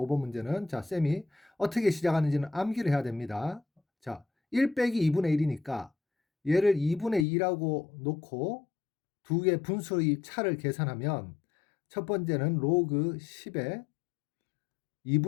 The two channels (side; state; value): right; drops out; at 7.2 s